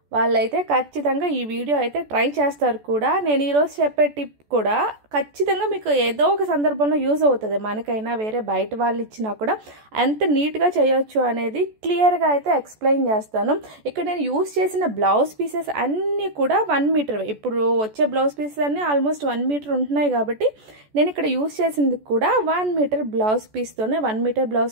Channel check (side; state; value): left; late; 14 ms